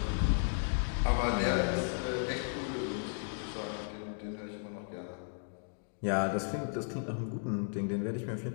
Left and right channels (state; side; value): silent; right; digital silence